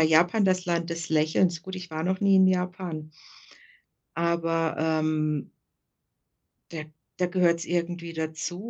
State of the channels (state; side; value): identical; both; correlation 1.00